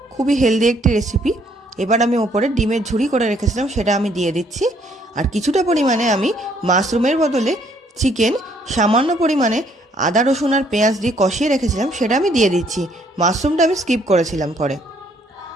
খুবই হেলদি একটি রেসিপি। এবার আমি ওপরে ডিমের ঝুড়ি করে রেখেছিলাম, সেটা আমি দিয়ে দিচ্ছি। আর কিছুটা পরিমাণে আমি মাশরুমের বদলে চিকেন সামান্য পরিমাণে আদা রসুন আর পেঁয়াজ দিয়ে কষিয়ে রেখেছিলাম, সেটা আমি দিয়ে দিচ্ছি। মাশরুমটা আমি স্কিপ করেছিলাম পরে।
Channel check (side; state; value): both; normal; correlation 0.66